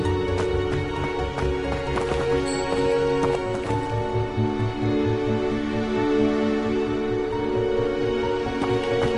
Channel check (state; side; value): identical; both; correlation 1.00